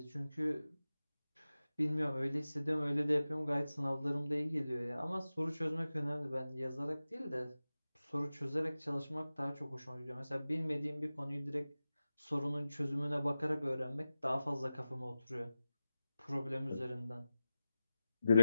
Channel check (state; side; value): inverted; both; correlation -0.94